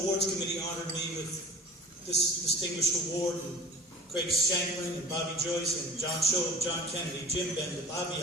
Committee honored me with this distinguished award. And Craig Shanklin and Bobby Joyce and John Schob, John Kennedy, Jim Bender, Bobby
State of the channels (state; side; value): normal; both; correlation 0.41